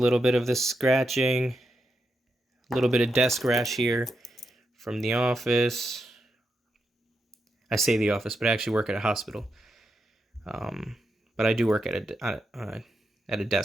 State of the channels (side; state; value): both; normal; correlation 0.85